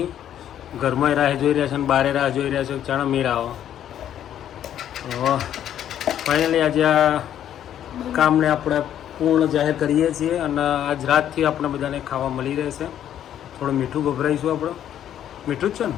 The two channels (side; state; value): right; quieter; 10.6 dB